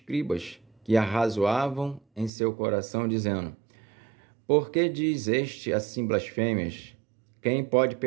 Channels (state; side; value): drops out; left; at 2.3 s